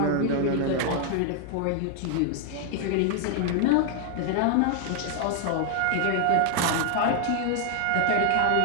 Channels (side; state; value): both; different; correlation 0.00